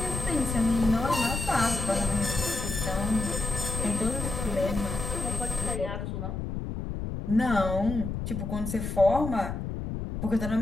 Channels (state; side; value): noise; left; rumble, 4 dB below the sound